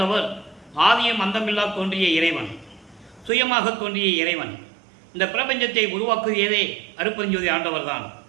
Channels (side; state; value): left; drops out; at 3.3 s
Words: ஆதியும் அந்தமில்லா தோன்றிய இறைவன், சுயமாக தோன்றிய இறைவன். இந்த பிரபஞ்சத்தை உருவாக்குவதே அருட்பெருஞ்சோதி ஆண்டவர் தான்.